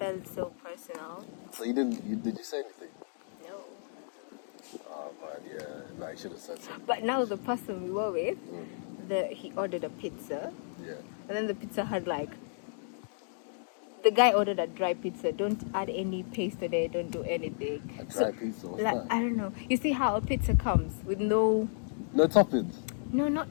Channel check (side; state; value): right; silent; digital silence